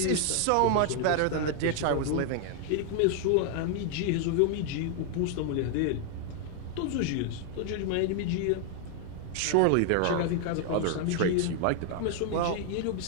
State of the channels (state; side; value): different; both; correlation 0.00